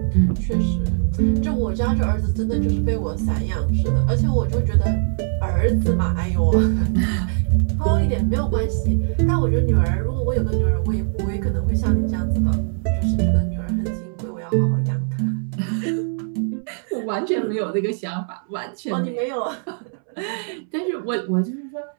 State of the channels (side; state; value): left; silent; 65 dB below the other